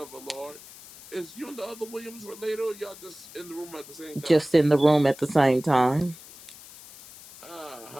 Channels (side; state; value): left; noise; hiss, 18 dB below the sound